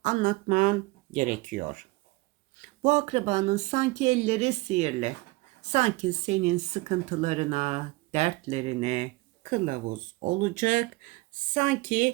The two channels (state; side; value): quieter; left; 21.8 dB